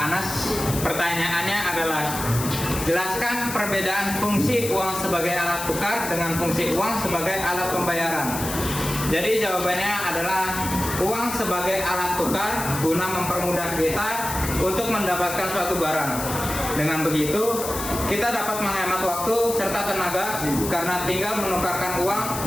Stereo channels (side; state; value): left; noise; hiss, 7 dB below the sound